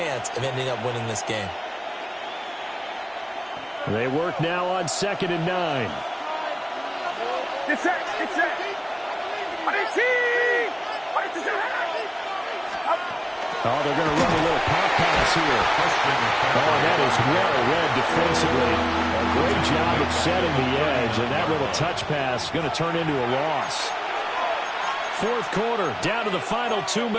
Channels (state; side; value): identical; both; correlation 1.00